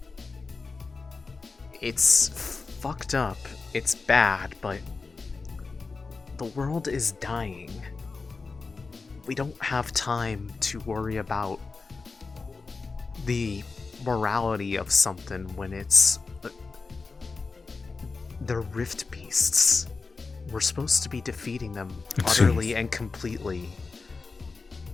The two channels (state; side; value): quieter; right; 4.3 dB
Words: it's fucked up. It's bad, but the world is dying. We don't have time to worry about the morality of something when it's the Rift Beasts. We're supposed to be defeating them utterly and completely,